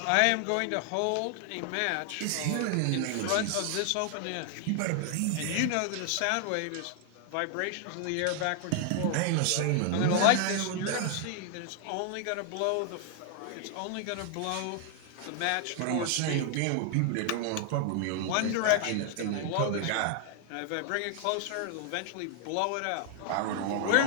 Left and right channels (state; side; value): different; both; correlation 0.00